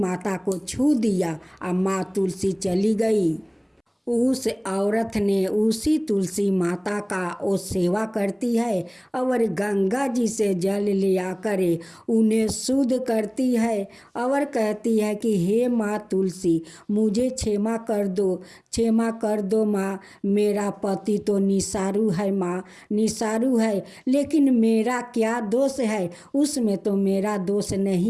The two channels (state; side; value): identical; both; correlation 1.00